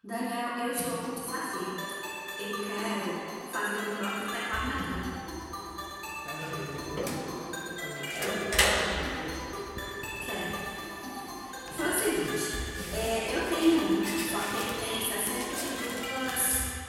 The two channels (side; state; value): both; identical; correlation 1.00